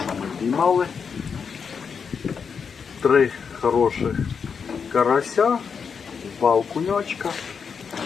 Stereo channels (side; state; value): right; quieter; 6.2 dB